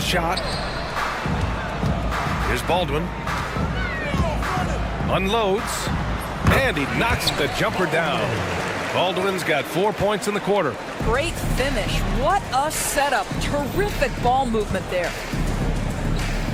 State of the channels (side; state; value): both; identical; correlation 1.00